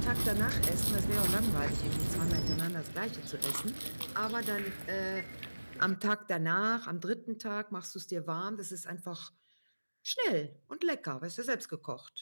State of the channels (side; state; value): both; inverted; correlation -1.00